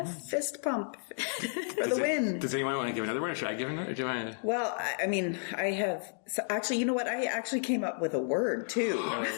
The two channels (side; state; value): right; silent; digital silence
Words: fist pump for the win. Does anyone want to give another one, or should I give another? Do you want to? Well, I mean, I have. So actually, you know what? I actually came up with a word too.